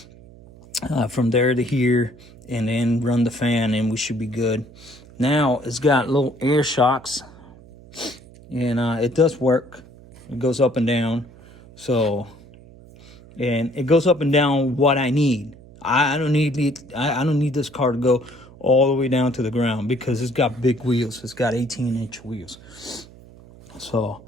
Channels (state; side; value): noise; right; hum, 22 dB below the sound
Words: from there to here, and then run the fan, and we should be good. Now it's got little air shocks, and it does work. It goes up and down, and it goes up and down what I need. I don't need this car to go all the way down to the ground because it's got big wheels. It's got 18-inch wheels. So